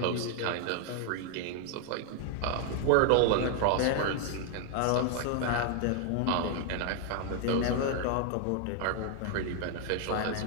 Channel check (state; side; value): different; both; correlation 0.00